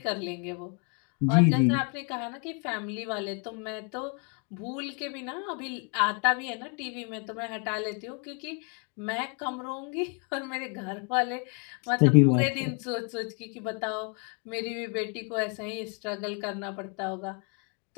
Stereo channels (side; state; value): right; quieter; 37.1 dB